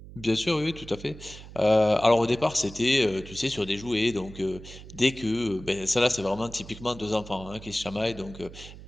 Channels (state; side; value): noise; right; hum, 16 dB below the sound